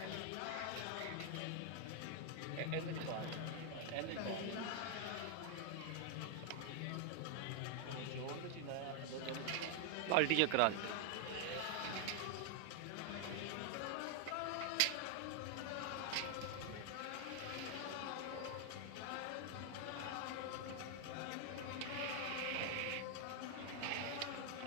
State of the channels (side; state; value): both; different; correlation 0.00